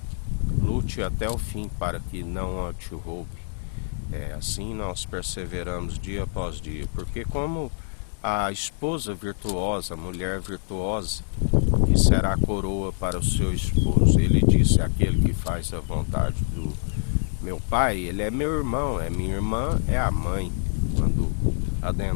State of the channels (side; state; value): right; silent; digital silence